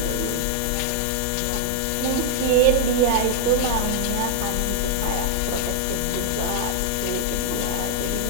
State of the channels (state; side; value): different; both; correlation 0.00